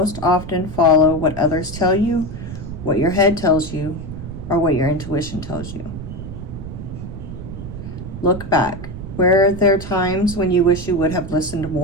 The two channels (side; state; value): right; noise; rumble, 9 dB below the sound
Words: often follow what others tell you, what your head tells you, or what your intuition tells you? Look back. Were there times when you wish you would have listened